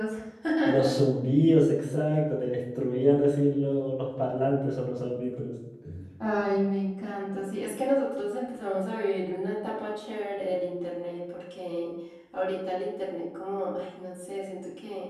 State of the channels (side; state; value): both; identical; correlation 1.00